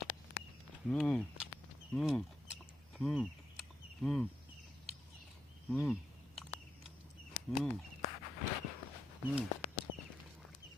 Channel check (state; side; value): normal; both; correlation 0.84